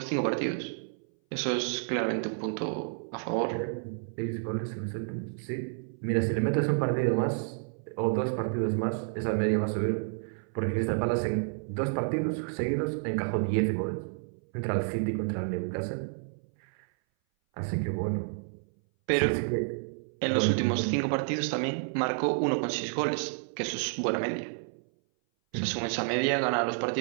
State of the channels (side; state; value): left; silent; 58 dB below the other